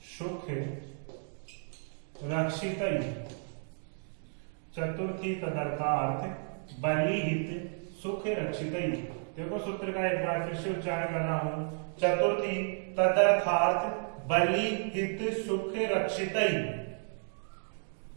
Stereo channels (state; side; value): silent; left; 56 dB below the other